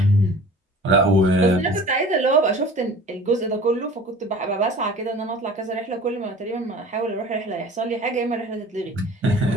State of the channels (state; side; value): normal; both; correlation 0.43